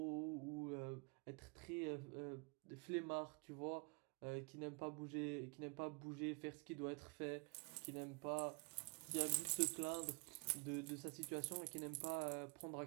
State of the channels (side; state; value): left; quieter; 32.4 dB